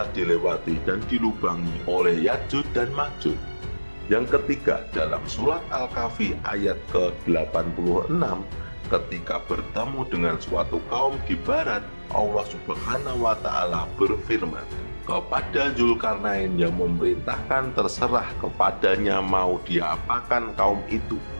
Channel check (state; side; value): inverted; both; correlation -1.00